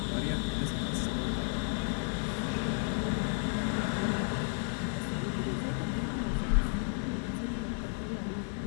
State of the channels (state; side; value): silent; right; 56 dB below the other